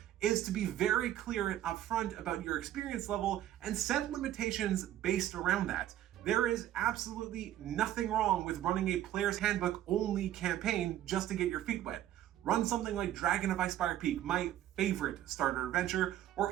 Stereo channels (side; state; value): left; quieter; 12.5 dB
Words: is to be very clear and upfront about your experience level and set limitations based around that. There is absolutely nothing wrong with running a player's handbook only campaign just to get your feet wet. Run something like Dragon of Icespire Peak, my favorite starter adventure, or